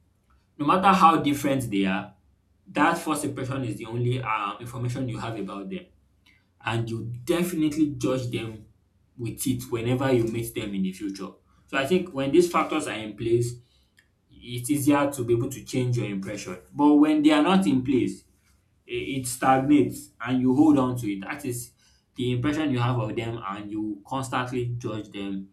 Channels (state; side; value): identical; both; correlation 1.00